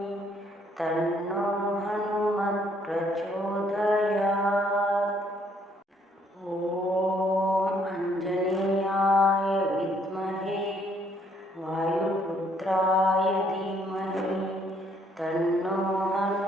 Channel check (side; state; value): both; normal; correlation 0.67